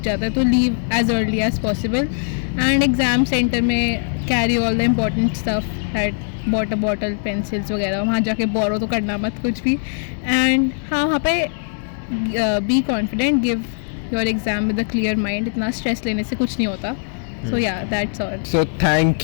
जाता है. तो leave as early as possible. And exam centre में carry all the important stuff, that water bottle, pencils वगैरह. वहाँ जाके बोरो तो करना मत कुछ भी. एंड हाँ, वहाँ पे be confident, give your exam with a clear mind. इतना स्ट्रेस लेने से कुछ नहीं होता. So yeah, that's all. So thank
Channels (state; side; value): silent; right; 65 dB below the other